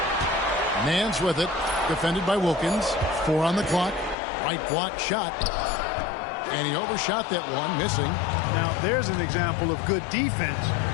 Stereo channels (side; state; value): right; drops out; at 4.2 s